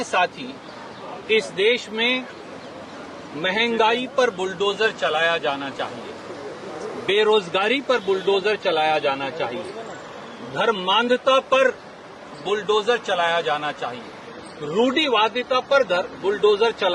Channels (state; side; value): identical; both; correlation 1.00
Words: साथी, इस देश में महंगाई पर बुलडोजर चलाया जाना चाहिए, बेरोजगारी पर बुलडोजर चलाया जाना चाहिए, धर्मांधता पर बुलडोजर चलाया जाना चाहिए, रूढ़िवादिता पर बुलडोजर